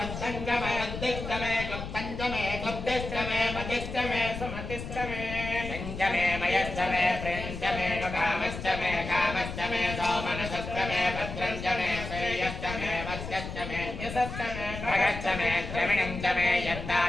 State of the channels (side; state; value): left; noise; rumble, 7 dB below the sound